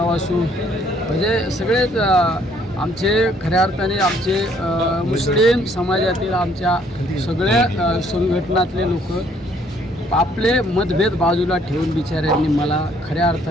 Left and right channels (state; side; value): normal; both; correlation 0.64